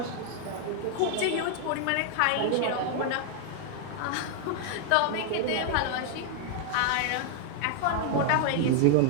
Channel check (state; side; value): different; both; correlation 0.00